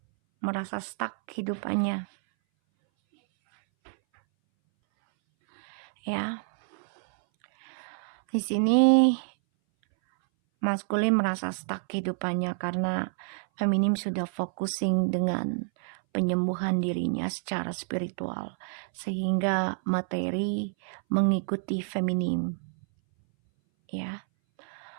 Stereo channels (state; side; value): silent; left; 59 dB below the other